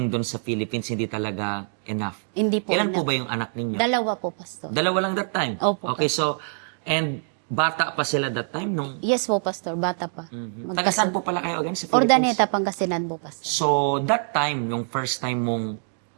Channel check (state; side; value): silent; left; 62 dB below the other